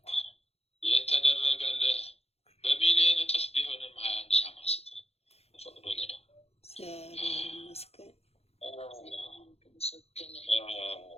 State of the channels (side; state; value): right; late; 0.30 ms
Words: የተደረገልህ በሚሊዮን እጥፍ ቢሆንም 21 ሻማ ስጥ። ፈቅዶልህ ነው። እግዚአብሔር ይመስገን።